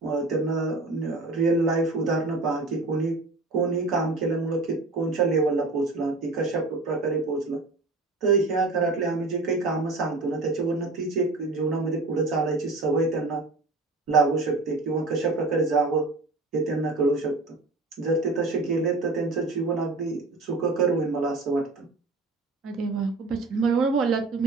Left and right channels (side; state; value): left; quieter; 3.3 dB